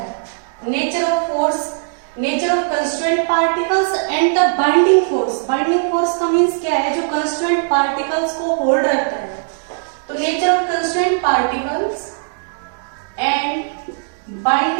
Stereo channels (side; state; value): left; silent; digital silence